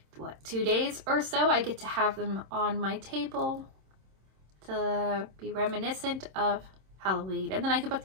2 days or so, I get to have them on my table to be reminiscent of Halloween. And then I could put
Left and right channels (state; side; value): late; left; 26 ms